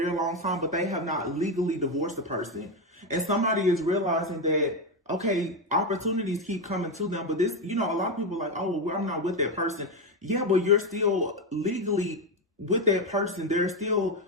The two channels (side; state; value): both; normal; correlation 0.10